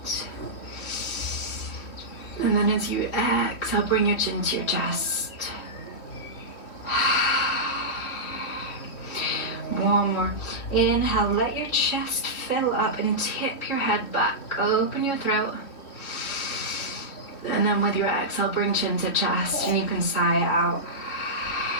And then as you exhale, bring your chin to your chest. One more. Inhale, let your chest fill up and tip your head back. Open your throat. And then with your exhale, bring chin to chest and you can sigh it out.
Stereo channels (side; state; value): right; late; 3.2 ms